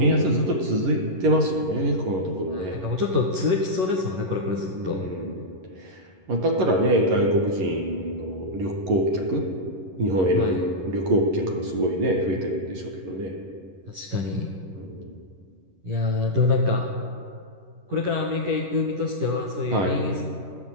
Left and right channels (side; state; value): left; late; 11 ms